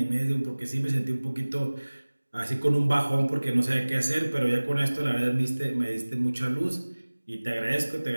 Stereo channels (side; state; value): both; inverted; correlation -1.00